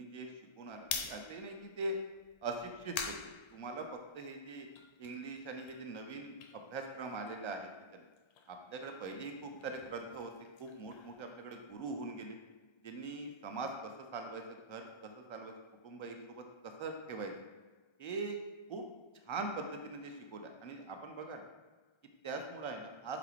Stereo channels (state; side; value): late; right; 1.3 ms